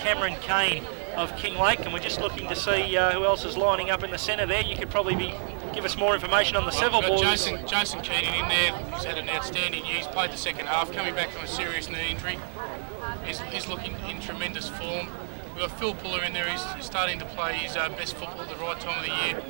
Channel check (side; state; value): left; silent; digital silence